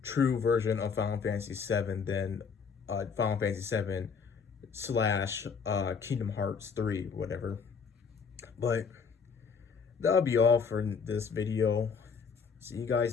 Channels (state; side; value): quieter; right; 5.9 dB